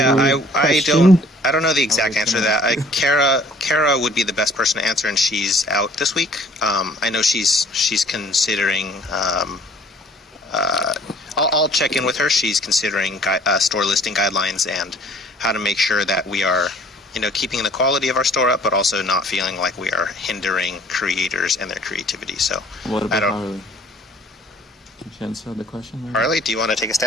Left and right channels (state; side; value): normal; both; correlation 0.55